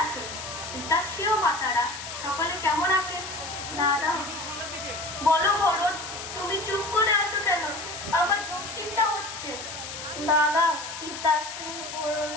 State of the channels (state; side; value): noise; left; hiss, 9 dB below the sound